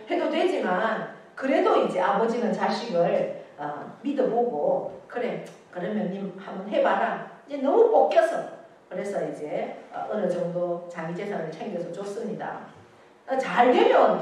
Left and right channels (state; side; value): identical; both; correlation 1.00